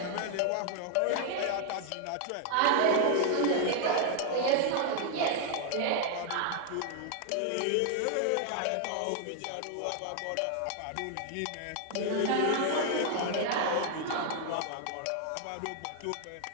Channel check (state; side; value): different; both; correlation 0.00